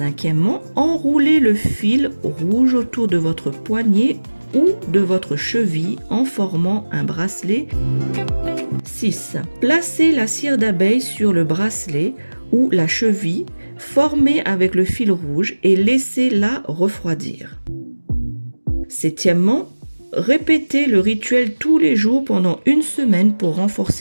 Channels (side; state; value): both; inverted; correlation -1.00